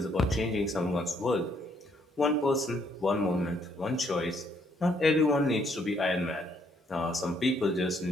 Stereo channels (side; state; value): both; normal; correlation 0.70